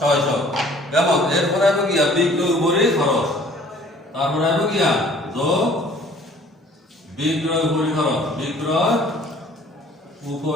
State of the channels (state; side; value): normal; both; correlation 0.53